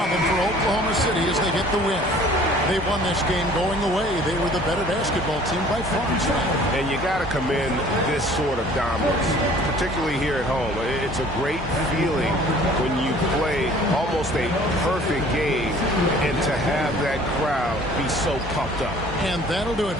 for Oklahoma City as they get the win. They won this game going away. They were the better basketball team by far and away. And you got to commend this sort of dominance, particularly here at home. It's a great feeling when you play almost a perfect game and to have that crowd be so pumped up. And that'll do it,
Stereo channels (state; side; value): normal; both; correlation 0.51